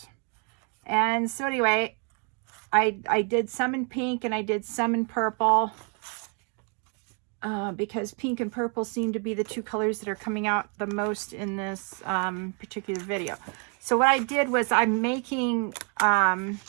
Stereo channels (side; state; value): left; quieter; 38.5 dB